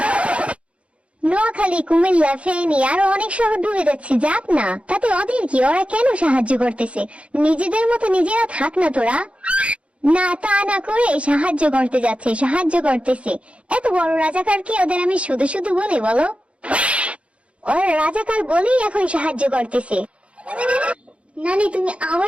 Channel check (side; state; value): left; late; 0.061 ms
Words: নোয়াখালী, কুমিল্লা, ফেনী আরো অনেক শহর ডুবে যাচ্ছে, যাক না, তাতে ওদের কি? ওরা কেন সাহায্য করতেছে? নিজেদের মতো নিজেরা থাক না তোরা। না, তা না করে সাহায্য করতে যাচ্ছে, সাহায্য করতেছে। এত বড় রাজাকার কি ওদের আমি শুধু শুধু বলি বলো? ওরা রাজাকার বলেই এখন সাহায্য করতেছে। নানি তুমি